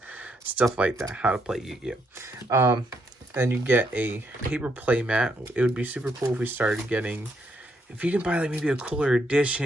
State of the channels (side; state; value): both; normal; correlation 0.76